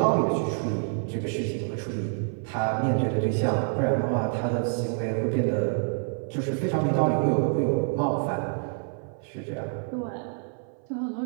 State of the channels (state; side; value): silent; left; 57 dB below the other